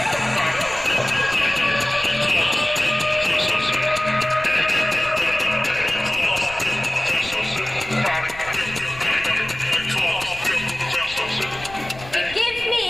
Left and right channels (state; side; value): noise; left; rumble, 17 dB below the sound